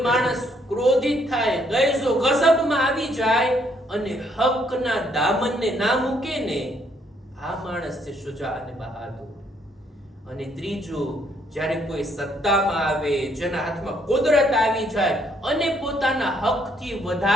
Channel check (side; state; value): both; normal; correlation 0.69